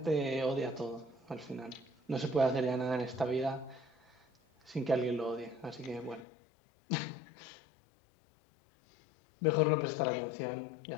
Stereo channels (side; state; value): right; drops out; at 6.2 s